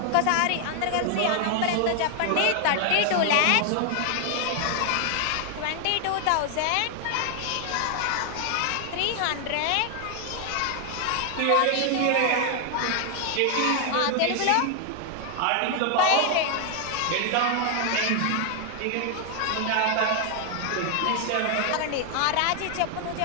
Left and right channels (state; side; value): different; both; correlation 0.00